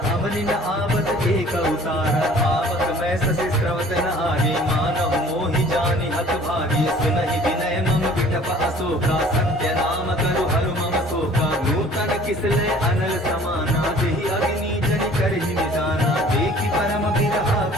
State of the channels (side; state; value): both; normal; correlation 0.50